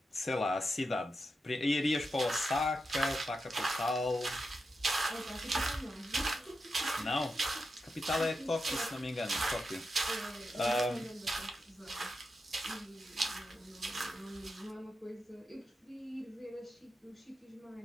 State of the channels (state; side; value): normal; both; correlation 0.88